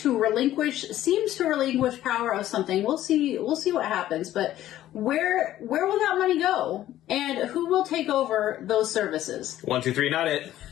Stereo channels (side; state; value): right; quieter; 13.4 dB